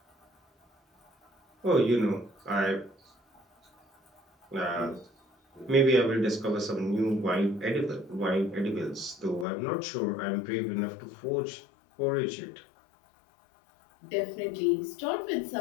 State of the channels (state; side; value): drops out; right; at 9.5 s